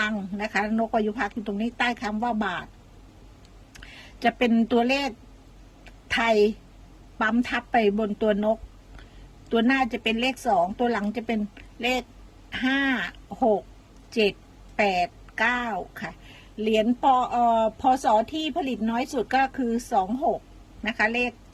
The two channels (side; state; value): both; identical; correlation 1.00